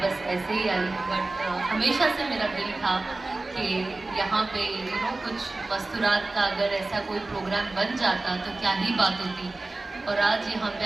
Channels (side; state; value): left; quieter; 3.2 dB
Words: बस ऐसे ही आई, बट हमेशा से मेरा दिल था कि यहाँ पे कुछ मस्तूरात का अगर ऐसा कोई प्रोग्राम बन जाता तो क्या ही बात होती। और आज यहाँ